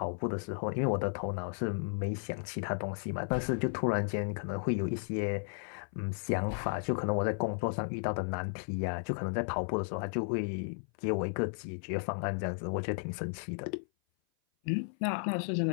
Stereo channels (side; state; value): right; silent; 55 dB below the other